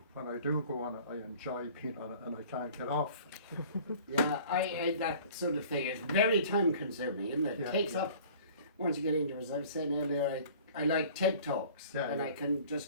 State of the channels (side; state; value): both; inverted; correlation -0.48